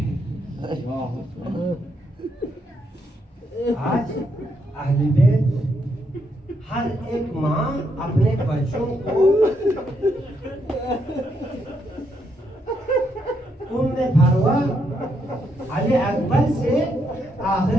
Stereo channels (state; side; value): normal; both; correlation 0.77